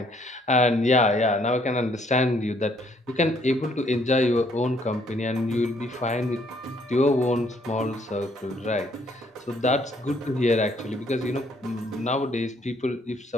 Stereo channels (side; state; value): both; normal; correlation 0.66